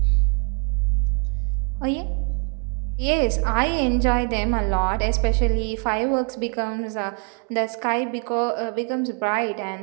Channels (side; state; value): left; quieter; 36.9 dB